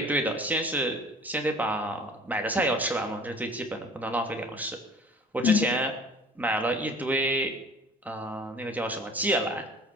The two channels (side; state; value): both; normal; correlation 0.47